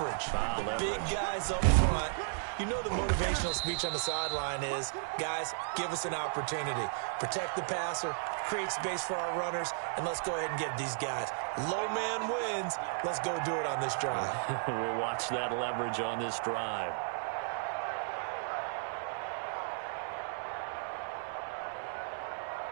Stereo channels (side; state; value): left; silent; 55 dB below the other